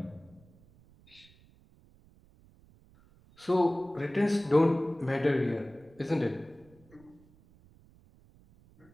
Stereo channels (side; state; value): right; noise; rumble, 27 dB below the sound